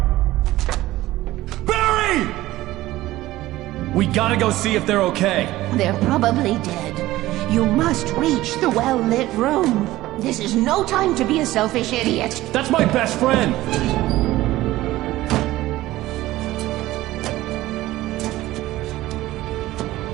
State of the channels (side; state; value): left; quieter; 16.6 dB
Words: Barry! We gotta go see if they're okay. They're probably dead. You must reach the well-lit room. This is no time to be a selfish idiot. That's my best friend.